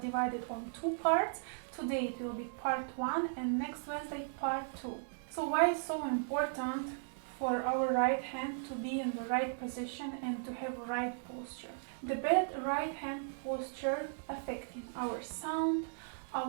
it on two parts. Today it will be part 1 and next Wednesday part 2. So why is so important for our right hand to be in the right position and to have right posture? The bad right hand posture affecting our sound,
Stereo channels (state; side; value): silent; left; digital silence